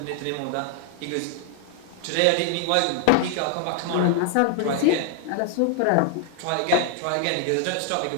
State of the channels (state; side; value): different; both; correlation 0.00